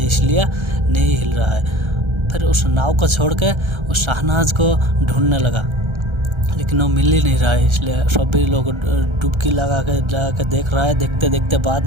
इसलिए नहीं हिल रहा है। फिर उस नाव को छोड़ के उस शहनाज को ढूंढने लगा, लेकिन वो मिल ही नहीं रहा है, इसलिए सभी लोग डुबकी लगा के देख रहा है। देखते देखते बाद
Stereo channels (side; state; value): left; late; 1.3 ms